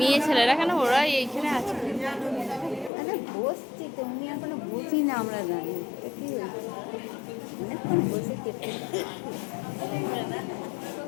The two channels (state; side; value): drops out; right; at 2.9 s